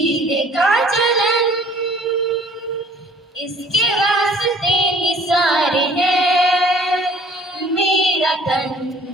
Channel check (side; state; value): both; normal; correlation 0.54